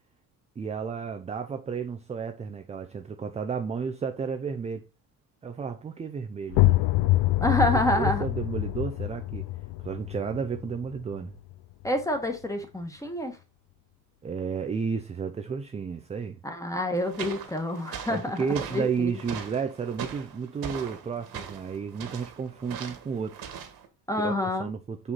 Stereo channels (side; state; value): both; normal; correlation 0.40